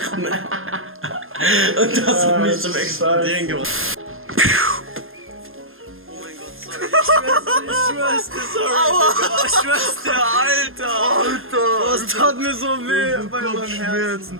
Ne? Und das hat mich zum Explodieren gebracht. Oh mein Gott, sorry. Ich schwör's dir, sorry. Aua. Ich schwör's dir, Alter. Das tat mir so weh bei meinem Herzen.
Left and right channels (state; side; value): late; left; 0.60 ms